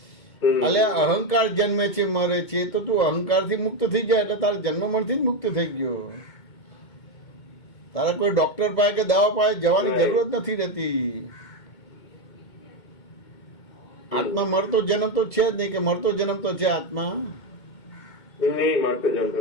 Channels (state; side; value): late; right; 2.2 ms